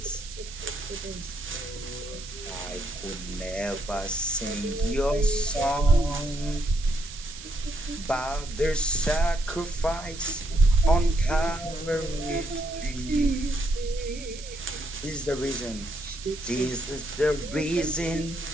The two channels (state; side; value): noise; right; hiss, 14 dB below the sound